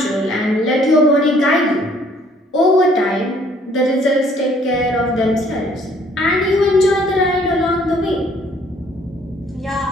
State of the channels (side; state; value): both; normal; correlation 0.61